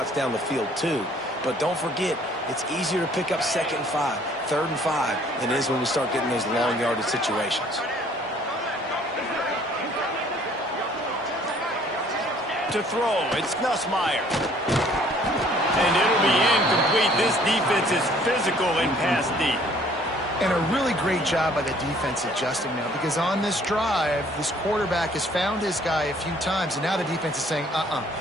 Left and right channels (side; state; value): both; normal; correlation 0.58